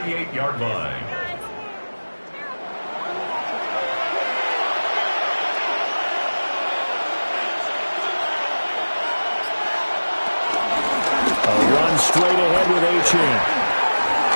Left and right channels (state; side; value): inverted; both; correlation -1.00